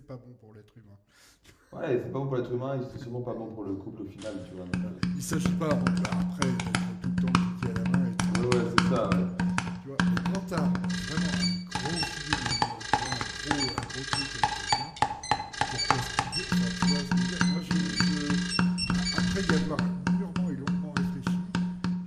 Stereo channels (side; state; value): both; identical; correlation 1.00